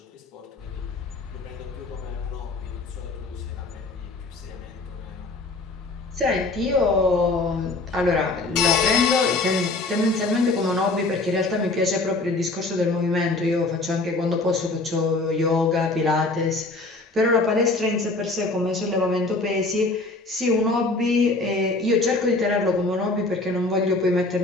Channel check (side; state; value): right; quieter; 3.2 dB